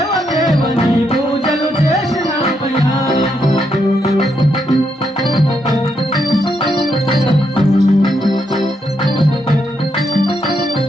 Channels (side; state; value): both; normal; correlation 0.79